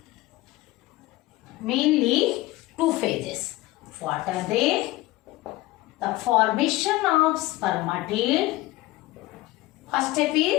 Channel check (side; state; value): right; quieter; 18.7 dB